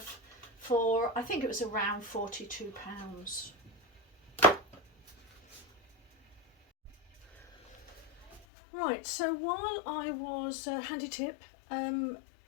for, I think it was around £42. Right, so while I was, handy tip,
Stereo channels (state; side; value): drops out; right; at 8.5 s